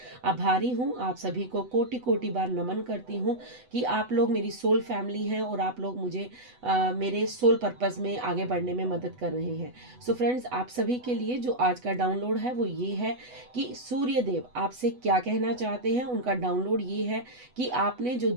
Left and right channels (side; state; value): left; late; 8.0 ms